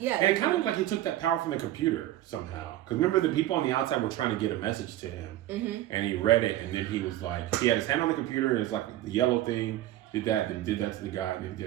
And it kind of looked like he took that power from the computer somehow. Because remember, the people on the outside were trying to get a message to him. Mm-hmm. And he read it, and then he was like, he had his hand on the computer, and it's like the yellow thing, did that, then did that to the guy, and then he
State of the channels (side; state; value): left; quieter; 14.3 dB